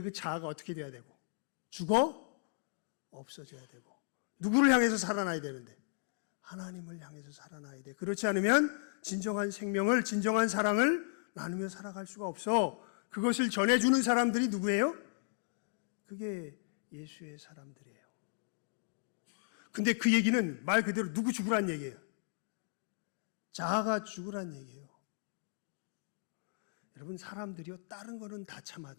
그 자아가 어떻게 돼야 되고, 죽어? 없어져야 되고, 누구를 향해서 살아나야 되는데? 하나님을 향해서 살아나야 돼. 그렇지 않으면 진정한 생명을, 진정한 사랑을 나누며 살아갈 수가 없어. 그것을 전해주는 사람들이 누구예요? 그게 예수의 사람들이에요. 근데 그 얘기는 말 그대로 누구 죽으란 얘기예요? 자아가 죽으란 얘기예요. 여러분, 사람들이요, 다른 거는 다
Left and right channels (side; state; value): right; silent; digital silence